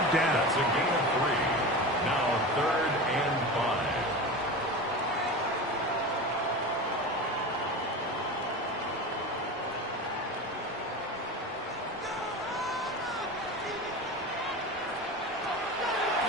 down. That's a gain of 3. Now 3rd and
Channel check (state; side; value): normal; both; correlation 0.28